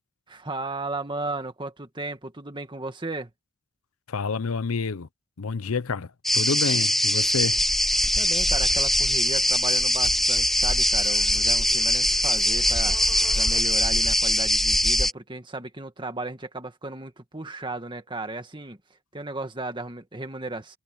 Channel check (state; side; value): normal; both; correlation 0.79